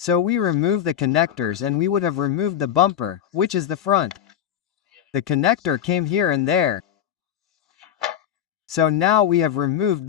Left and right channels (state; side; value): quieter; right; 9.8 dB